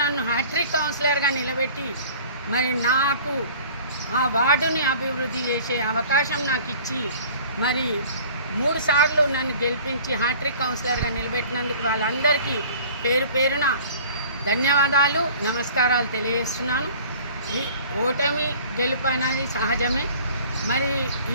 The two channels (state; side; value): inverted; both; correlation -0.47